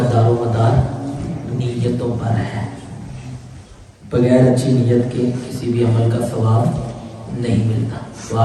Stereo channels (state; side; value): identical; both; correlation 1.00